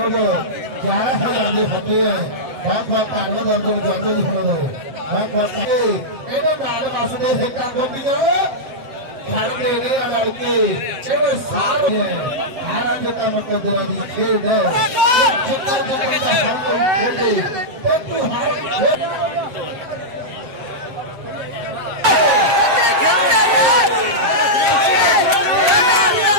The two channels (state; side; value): late; left; 7.6 ms